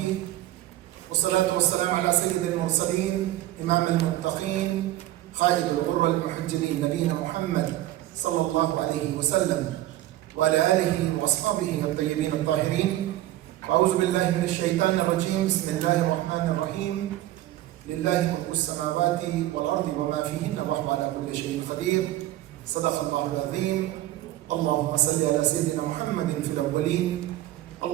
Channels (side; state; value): left; quieter; 15.1 dB